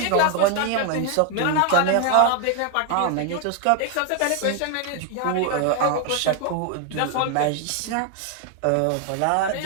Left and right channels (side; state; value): both; different; correlation 0.00